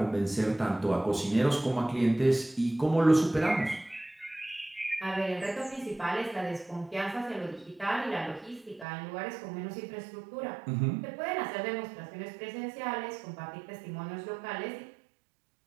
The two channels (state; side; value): drops out; left; at 8.8 s